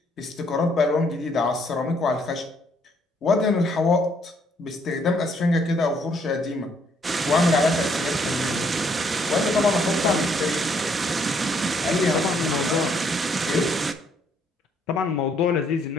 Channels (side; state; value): both; normal; correlation 0.68